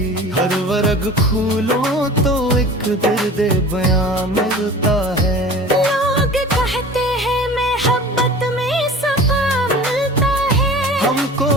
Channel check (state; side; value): normal; both; correlation 0.40